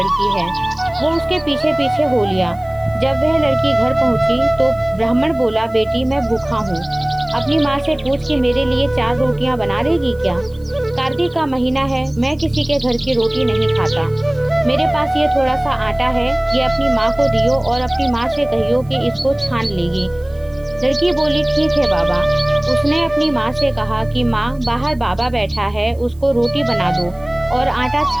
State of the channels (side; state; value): right; noise; hiss, 29 dB below the sound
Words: है। वो उसके पीछे पीछे हो लिया। जब वह लड़की घर पहुंची तो ब्राह्मण बोला, बेटी मैं भूखा हूँ, अपनी माँ से पूछ कि मेरे लिए 4 रोटियाँ बना देगी क्या? कार्तिक का महीना है, मैं किसी के घर की रोटी नहीं खाता। मेरे पास ये थोड़ा सा आटा है, ये अपनी माँ को दियो और अपनी माँ से कहियो कि इसको छान लेगी। लड़की बोली, ठीक है बाबा। उसने अपनी माँ से कहा कि माँ, बाहर बाबा बैठा है, उसको रोटी बना दो और आटा